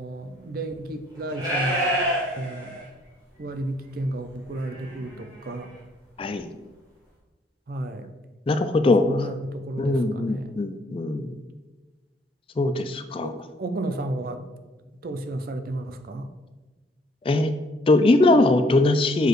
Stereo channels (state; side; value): normal; both; correlation 0.65